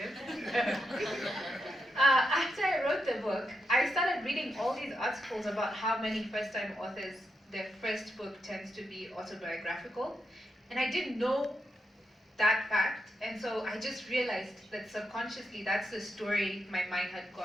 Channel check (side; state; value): both; normal; correlation 0.84